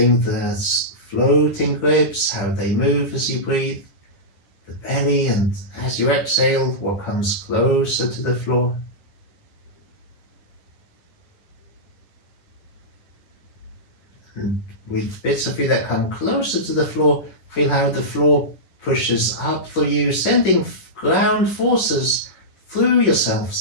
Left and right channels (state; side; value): late; right; 10 ms